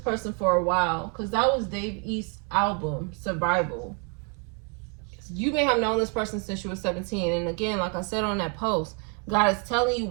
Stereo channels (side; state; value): left; quieter; 35.1 dB